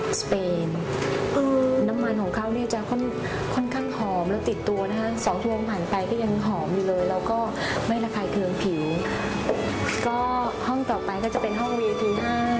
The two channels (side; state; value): both; identical; correlation 1.00